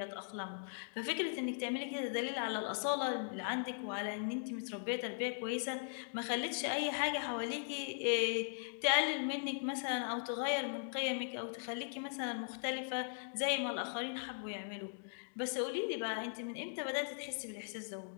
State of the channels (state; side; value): silent; right; digital silence